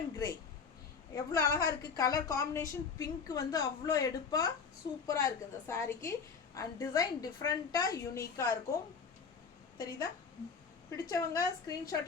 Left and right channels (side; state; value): right; quieter; 5.7 dB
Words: கிரே. எவ்வளோ அழகாக இருக்குது கலர் காம்பினேஷன். பிங்க் வந்து அவ்வளோ எடுப்பாக சூப்பராக இருக்குது இந்த சாரீக்கு. அண்ட் டிசைன் டிஃப்ரெண்ட்டாக யூனிக்காக இருக்கும். தெரியுதா? பிடிச்சவங்க